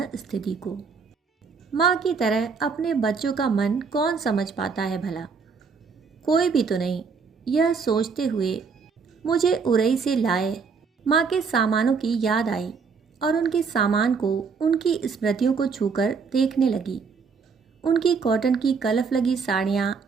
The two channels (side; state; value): left; quieter; 5.4 dB